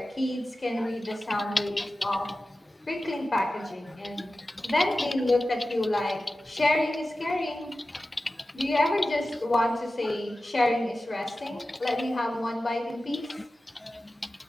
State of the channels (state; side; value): normal; both; correlation 0.95